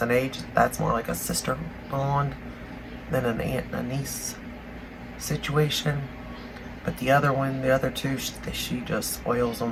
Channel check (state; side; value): identical; both; correlation 1.00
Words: in age. That's more like a sister bond than an aunt and a niece situation. But the other one, the other two, she just spoils